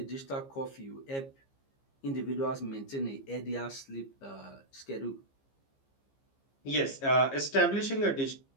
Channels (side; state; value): right; late; 15 ms